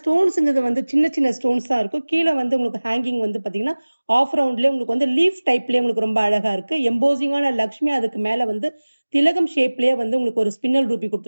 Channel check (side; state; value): both; inverted; correlation -1.00